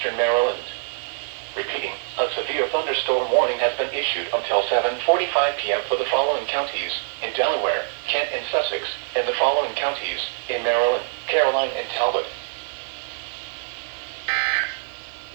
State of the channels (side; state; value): left; silent; 63 dB below the other